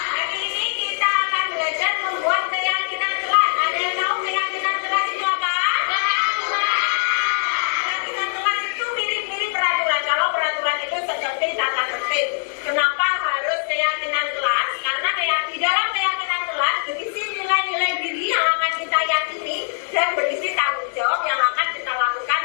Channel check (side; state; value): right; silent; digital silence